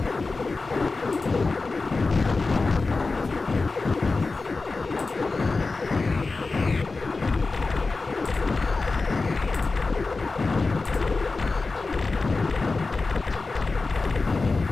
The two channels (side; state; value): right; quieter; 3.8 dB